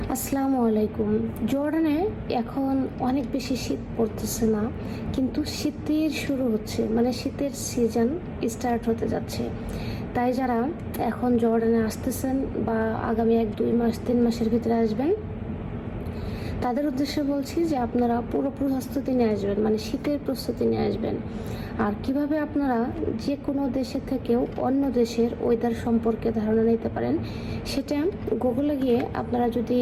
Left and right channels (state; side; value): identical; both; correlation 1.00